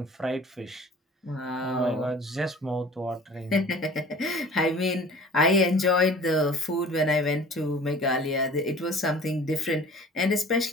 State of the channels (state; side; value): normal; both; correlation 0.46